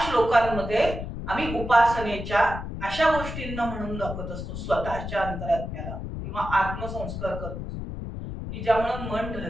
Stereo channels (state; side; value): noise; left; rumble, 7 dB below the sound